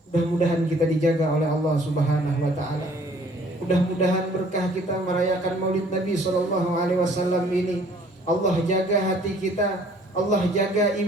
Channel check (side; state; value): both; normal; correlation 0.57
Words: Mudah-mudahan kita dijaga oleh Allah Subhanahu wa taala. Mudah-mudahan berkah kita merayakan Maulid Nabi SAW ini. Allah jaga hati kita, Allah jaga